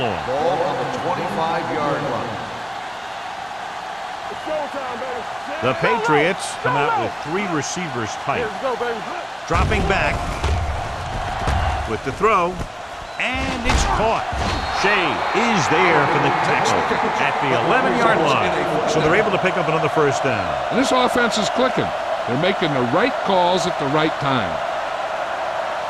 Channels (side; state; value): both; identical; correlation 1.00